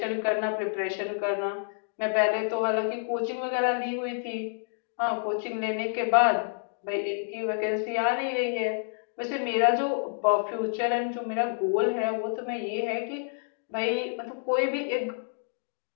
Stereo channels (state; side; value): silent; right; digital silence